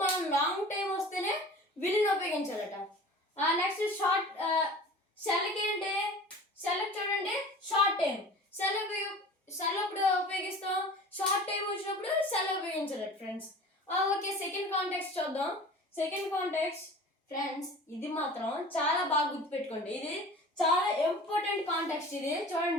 మనం లాంగ్ టైం వస్తేనే విల్లుని ఉపయోగించాలట. నెక్స్ట్ షెల్కి ఏంటి, షెల్కి చూడండి షార్ట్ టైం. షెల్ ఎప్పుడు ఉపయోగిస్తాం, షార్ట్ టైం వచ్చినప్పుడు షెల్ ఉపయోగించాలట ఫ్రెండ్స్. ఓకే, సెకండ్ కాంటాక్ట్స్ చూద్దాం. సెకండ్ కాంటాక్ట్స్ ఫ్రెండ్స్, ఇది మాత్రం చాలా బాగా గుర్తుపెట్టుకోండి, ఇది చాలా ఇంపార్టెంట్ కాంటాక్ట్స్. ఇది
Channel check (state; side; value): normal; both; correlation 0.41